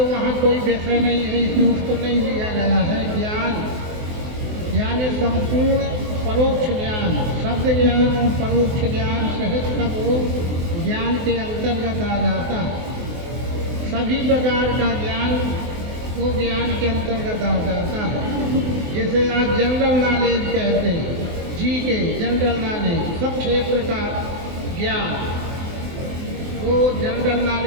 वहाँ कोई विषय नहीं है, इसलिए उसको नहीं लिया गया है। ज्ञान यानी संपूर्ण परोक्ष ज्ञान, शब्द ज्ञान और परोक्ष ज्ञान सहित सब वो ज्ञान के अंतर्गत आ जाता है। सभी प्रकार का ज्ञान वो ज्ञान के अंतर्गत आ जाता है। जैसे आज जनरल नॉलेज कहते हैं, जी के जनरल नॉलेज, सब क्षेत्र का ज्ञान, वो जनरल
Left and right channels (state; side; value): late; left; 24 ms